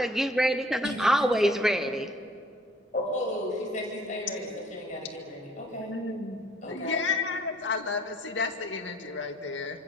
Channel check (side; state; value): both; normal; correlation 0.57